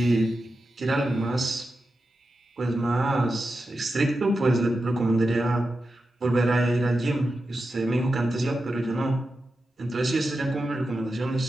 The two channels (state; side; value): normal; both; correlation 0.90